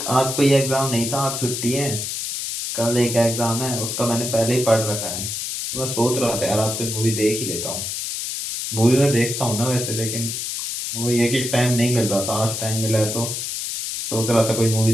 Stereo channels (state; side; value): noise; left; hiss, 4 dB below the sound